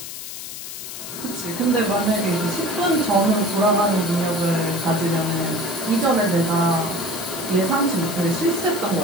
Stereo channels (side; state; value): left; noise; hiss, 9 dB below the sound